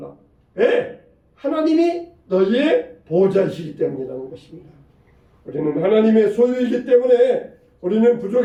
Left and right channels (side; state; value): both; identical; correlation 1.00